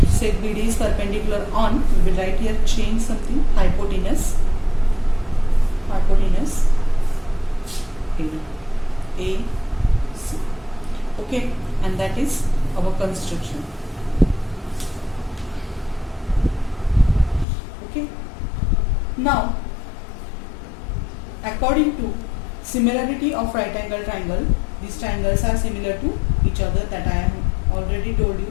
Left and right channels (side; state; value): right; drops out; at 17.4 s